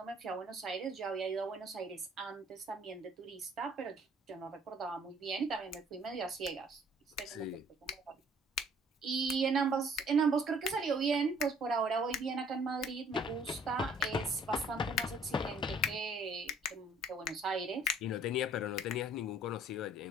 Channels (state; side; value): normal; both; correlation 0.58